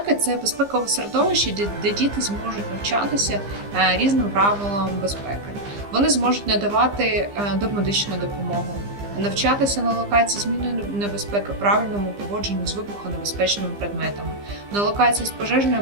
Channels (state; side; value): late; left; 15 ms